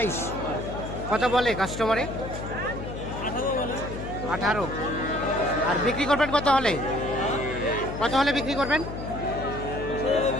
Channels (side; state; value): left; noise; hum, 8 dB below the sound